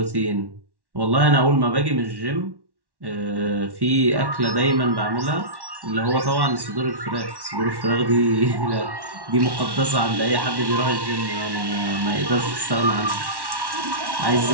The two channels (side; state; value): left; late; 1.1 ms